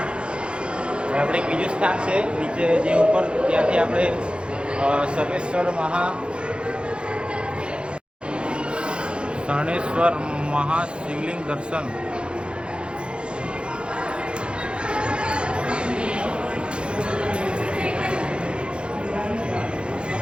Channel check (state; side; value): late; left; 0.056 ms